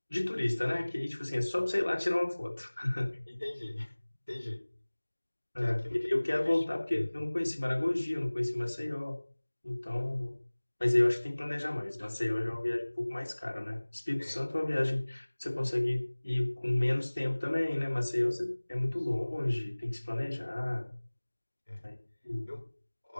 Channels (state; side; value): inverted; both; correlation -1.00